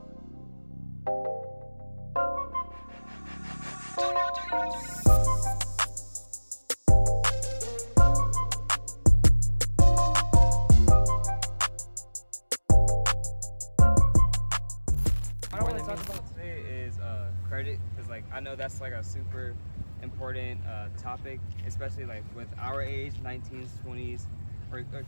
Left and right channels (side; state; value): both; inverted; correlation -1.00